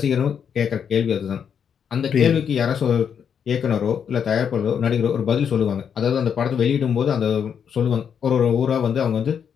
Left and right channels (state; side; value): quieter; right; 7.6 dB